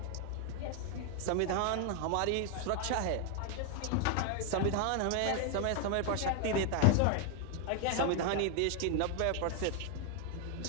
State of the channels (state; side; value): different; both; correlation 0.01